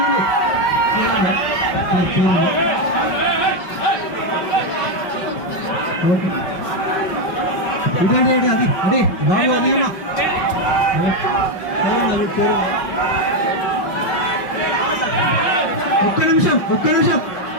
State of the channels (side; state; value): right; late; 5.5 ms